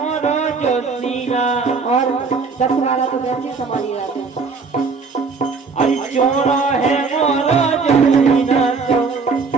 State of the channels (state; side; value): quieter; left; 4.7 dB